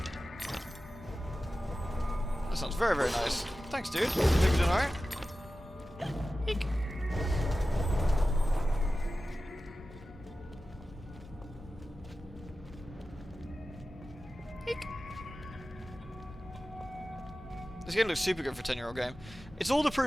That sounds very, very nice. Thanks, dude. Think you're doing alright? Eek. Eek. This game looks super good for a 10-year-old game. It's all the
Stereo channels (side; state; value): both; normal; correlation 0.95